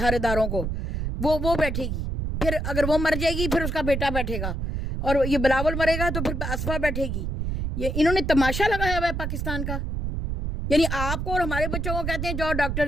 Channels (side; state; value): right; noise; rumble, 2 dB below the sound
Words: اداروں کو, وہ بیٹھے گی. پھر اگر وہ مر جائے گی پھر اس کا بیٹا بیٹھے گا, اور یہ بلاول مرے گا تو پھر اسفا بیٹھے گی. یہ انہوں نے تماشا لگایا ہوا ہے پاکستان کا. یعنی آپ کو اور ہمارے بچوں کو کہتے ہیں جاؤ ڈاکٹر